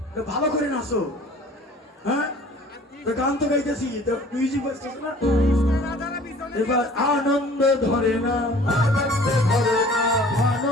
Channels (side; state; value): both; normal; correlation 0.49